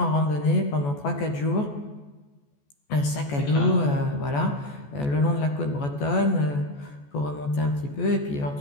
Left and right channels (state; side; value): late; right; 14 ms